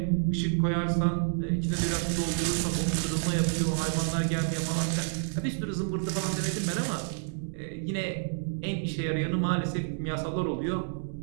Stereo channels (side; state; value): left; silent; digital silence